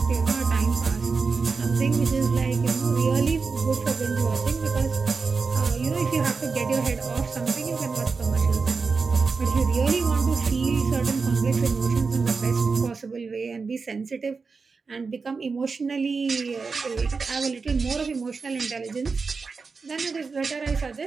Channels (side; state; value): left; quieter; 4.7 dB